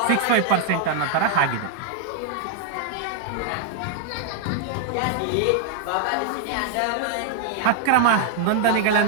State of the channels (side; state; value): both; different; correlation 0.00